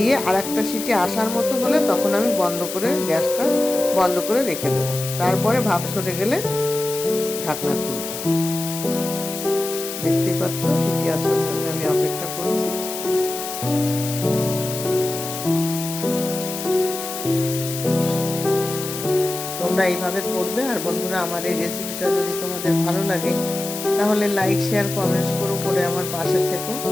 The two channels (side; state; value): left; noise; hiss, 7 dB below the sound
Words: আর একটা সিটি আসার মতো হলে তখন আমি বন্ধ করে গ্যাসটা বন্ধ করে রেখে দেবো। তারপরে ভাপ সরে গেলে ঢাকনা খুলবো। দেখতেই পাচ্ছ সিটি আসার জন্য আমি অপেক্ষা করছি। তোমরা এইভাবে করবে। আর বন্ধুরা, আমার এই রেসিপিটা যদি তোমাদের ভালো লাগে তাহলে লাইক শেয়ার কমেন্টস করে আমার পাশে থেকো।